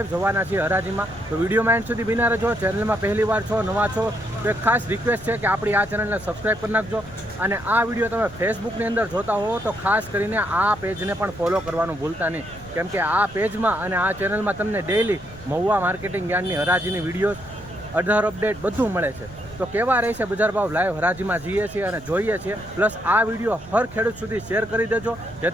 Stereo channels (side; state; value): right; noise; rumble, 19 dB below the sound